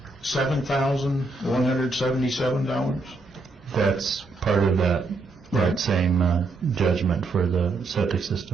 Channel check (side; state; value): left; quieter; 3.4 dB